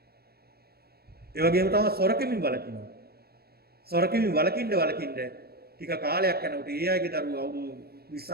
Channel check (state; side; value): late; left; 0.46 ms